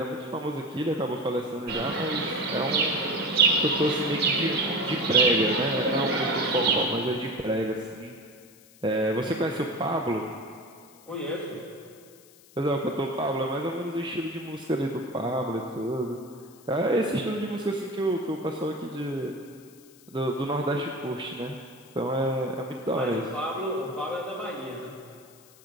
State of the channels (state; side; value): noise; left; hiss, 25 dB below the sound